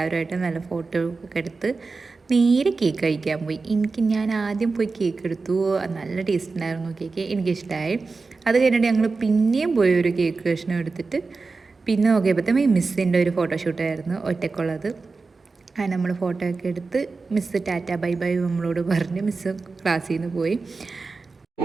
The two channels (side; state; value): left; quieter; 4.1 dB